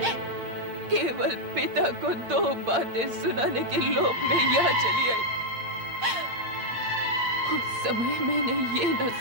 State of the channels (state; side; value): late; left; 8.7 ms